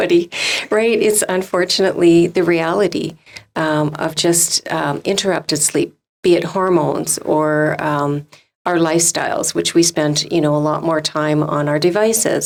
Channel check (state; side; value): identical; both; correlation 1.00